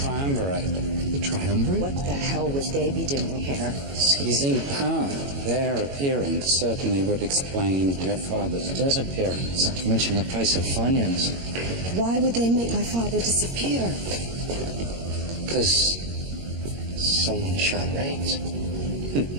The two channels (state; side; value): late; left; 22 ms